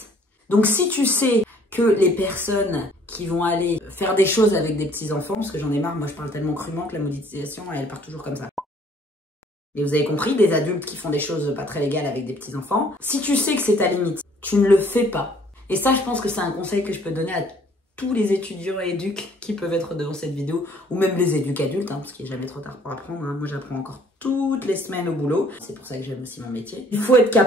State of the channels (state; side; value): normal; both; correlation 0.59